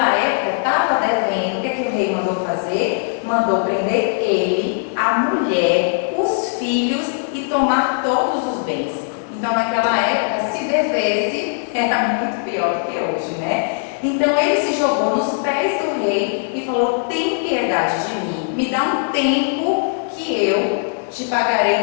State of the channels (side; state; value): right; silent; 65 dB below the other